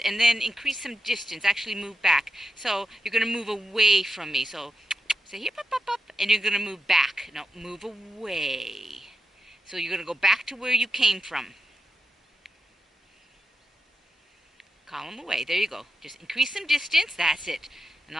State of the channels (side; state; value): both; normal; correlation 0.84